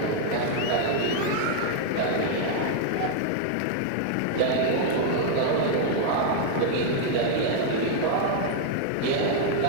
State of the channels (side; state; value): both; different; correlation 0.00